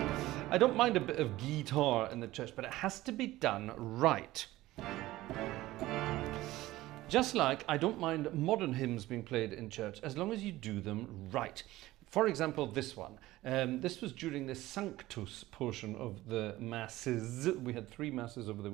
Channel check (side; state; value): left; quieter; 17.0 dB